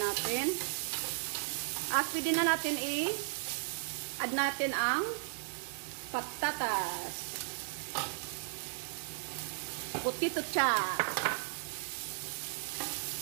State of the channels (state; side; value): silent; left; digital silence